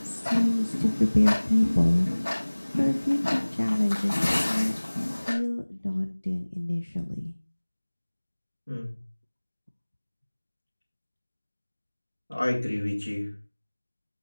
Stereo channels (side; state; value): both; inverted; correlation -1.00